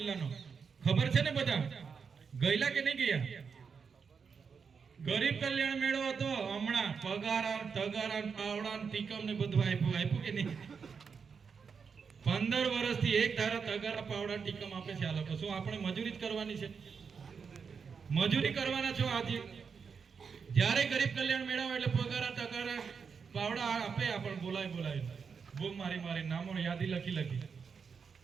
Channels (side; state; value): left; quieter; 5.9 dB